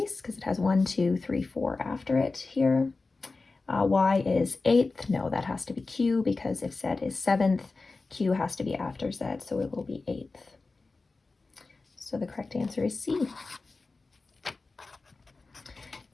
because it has 1, 2, 3, 4 after it here. Y is 8th. No, that has to be Q, because if Z is 7th, Q has to be after Z, so it will be 8th. So the correct answer is C.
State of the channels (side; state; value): right; quieter; 3.7 dB